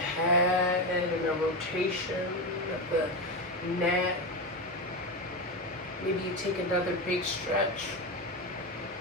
and a rotation of the neck. Maybe you take another big stretch.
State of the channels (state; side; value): normal; both; correlation 0.15